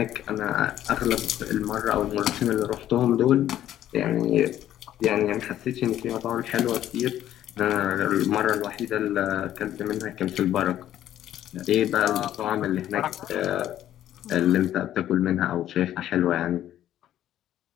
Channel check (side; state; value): right; quieter; 12.1 dB